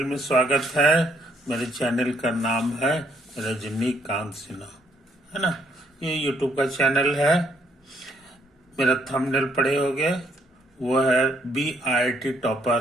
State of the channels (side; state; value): both; normal; correlation 0.70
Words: में स्वागत है। मेरे चैनल का नाम है रजनीकांत सिन्हा, है ना। ये यूट्यूब का चैनल है। मेरा थंबनेल पढ़े होगे, वो है BIT